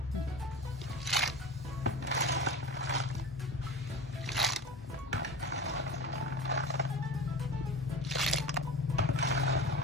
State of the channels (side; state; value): both; normal; correlation 0.32